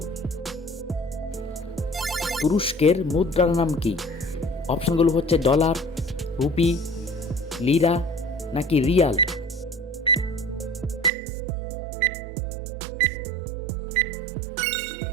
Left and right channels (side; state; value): left; drops out; at 11.1 s